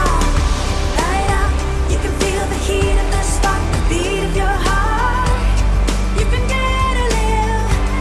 Light up, you can feel the heat of the spark, the beat of your heart. You can dare to live,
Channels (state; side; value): identical; both; correlation 1.00